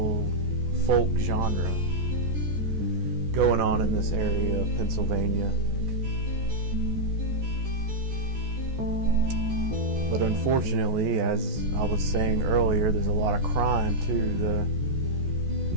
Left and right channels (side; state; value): left; late; 14 ms